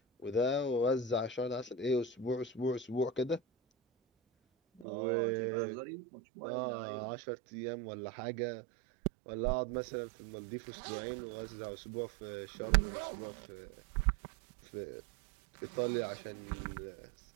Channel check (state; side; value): drops out; left; at 4.9 s